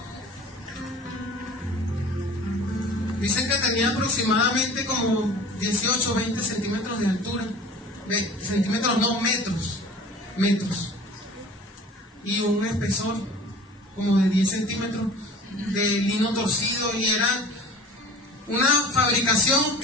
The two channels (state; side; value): normal; both; correlation 0.43